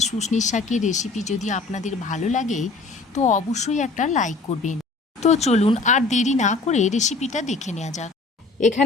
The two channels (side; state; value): right; quieter; 3.8 dB